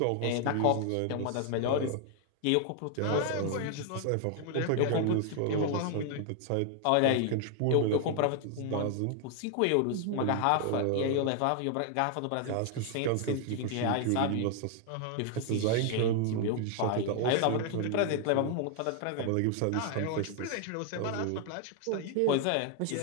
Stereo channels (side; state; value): both; different; correlation 0.00